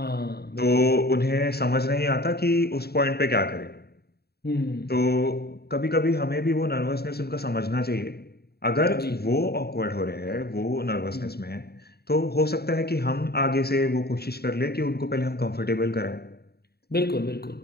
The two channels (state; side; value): late; right; 0.46 ms